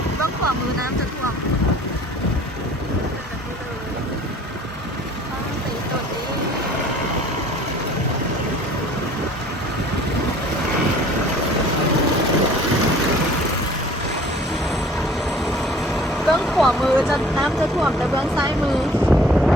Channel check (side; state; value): both; normal; correlation 0.50